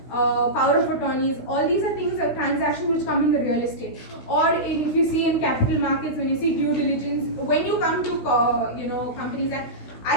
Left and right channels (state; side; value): late; right; 16 ms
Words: power of attorneys, all these are things, transactions which come in the real estate. Or if you see in capital markets, when you see due diligence, when you come to you know, Companies Act, I